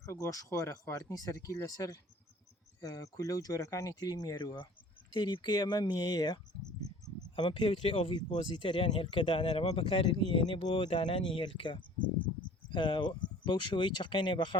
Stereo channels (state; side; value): normal; both; correlation 0.48